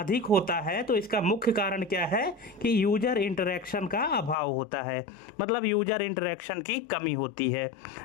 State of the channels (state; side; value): drops out; right; at 4.4 s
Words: होता है तो इसका मुख्य कारण क्या है कि यूजर इंटरेक्शन का अभाव होता है, मतलब यूजर इंटरेक्शन की कमी होती है।